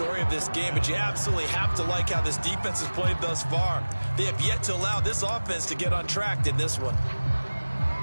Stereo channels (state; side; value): inverted; both; correlation -1.00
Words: of this game, but you absolutely have to like how this defense has played thus far. They have yet to allow this offense to get on track in this one.